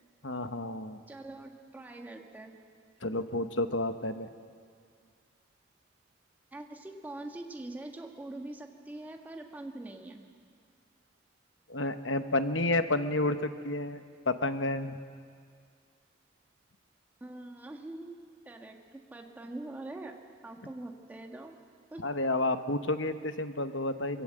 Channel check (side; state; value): both; normal; correlation -0.11